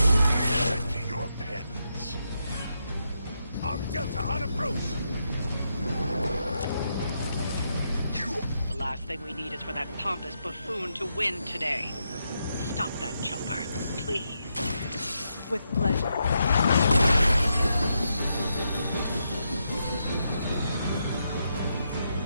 To your penance. Arm Delta on approach. The last thing we need is for that pompous buffoon to win today. Stop that chopper, please. With pleasure.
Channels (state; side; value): inverted; both; correlation -0.82